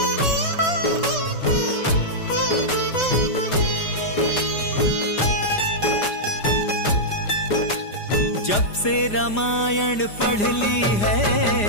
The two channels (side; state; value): right; late; 4.9 ms